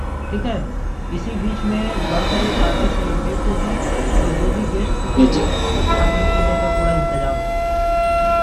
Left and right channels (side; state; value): both; identical; correlation 1.00